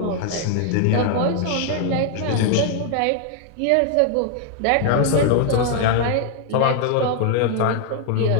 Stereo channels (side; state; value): both; different; correlation 0.00